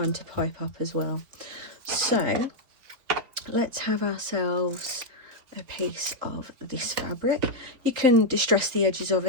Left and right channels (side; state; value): left; late; 3.8 ms